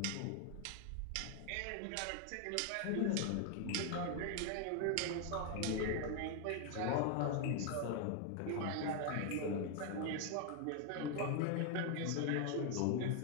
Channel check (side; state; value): both; different; correlation 0.00